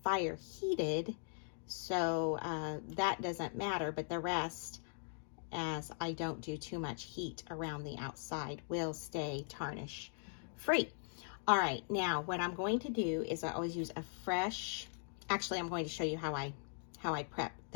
fire heated, so that doesn't matter, but the rest, as I don't do too much heat around the outside, will stay tarnish free. All right, now what I'm going to do is I always use a fresh, actually I'm going to show you how I prep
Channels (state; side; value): silent; right; digital silence